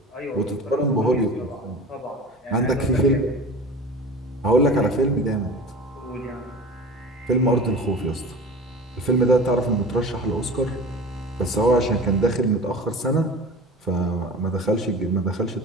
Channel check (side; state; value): both; normal; correlation 0.37